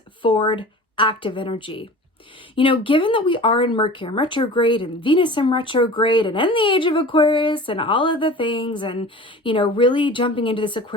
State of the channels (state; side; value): normal; both; correlation 0.39